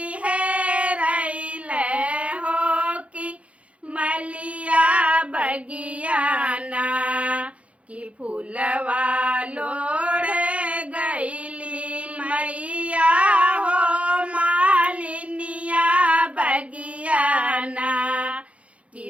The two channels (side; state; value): left; late; 0.063 ms